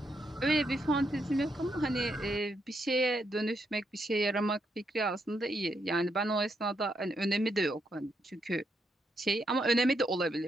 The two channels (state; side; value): normal; both; correlation 0.79